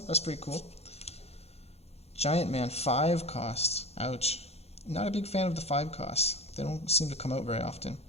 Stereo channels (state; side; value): late; right; 0.30 ms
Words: pretty cool. Giant Man, 5 costs. Ouch. Not a big fan of the 5 costs. They don't seem to come out very often.